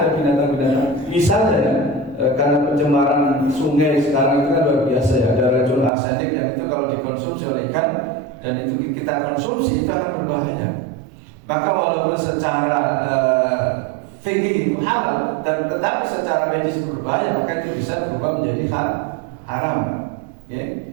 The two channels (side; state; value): left; drops out; at 5.9 s